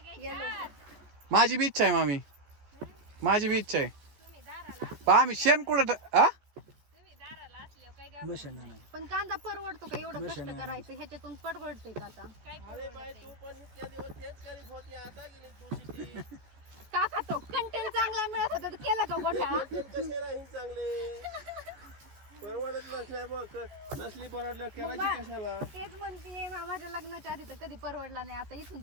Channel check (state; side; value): late; left; 15 ms